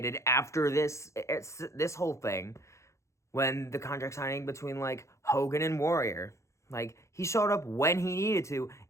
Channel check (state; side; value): late; right; 0.14 ms